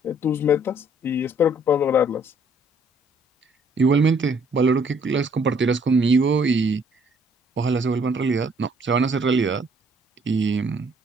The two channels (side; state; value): both; normal; correlation 0.63